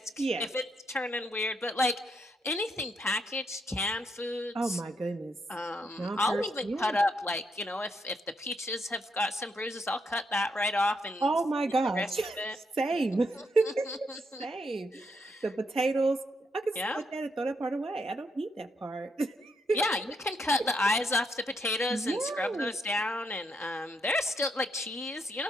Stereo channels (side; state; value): both; normal; correlation 0.78